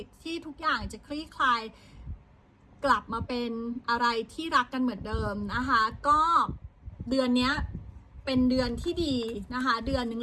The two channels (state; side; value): identical; both; correlation 1.00